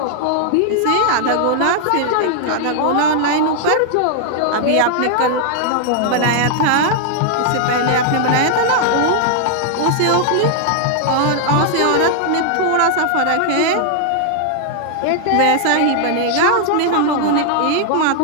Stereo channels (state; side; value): different; both; correlation -0.01